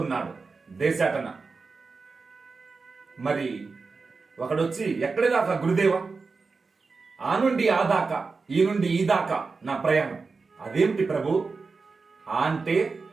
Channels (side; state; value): left; quieter; 4.4 dB